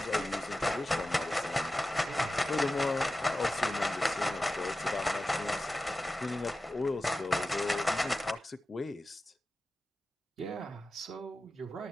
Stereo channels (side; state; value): both; normal; correlation 0.93